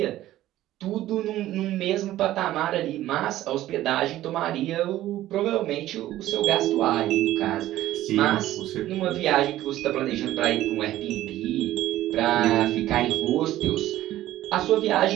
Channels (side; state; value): left; quieter; 14.4 dB